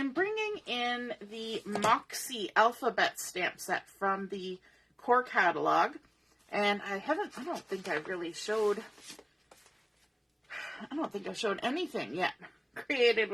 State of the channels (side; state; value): both; identical; correlation 1.00